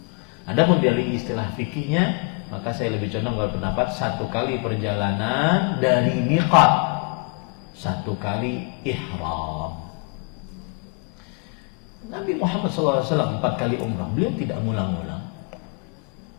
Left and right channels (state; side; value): quieter; right; 32.2 dB